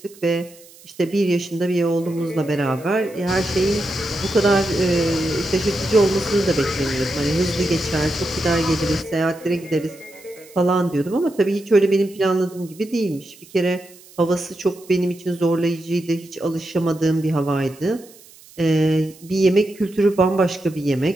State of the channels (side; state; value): right; noise; hiss, 23 dB below the sound